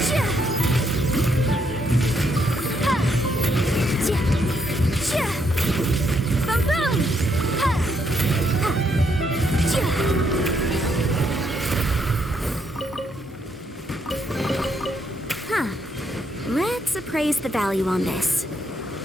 Boom boom. Let's appraise the value on this.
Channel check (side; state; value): both; normal; correlation 0.75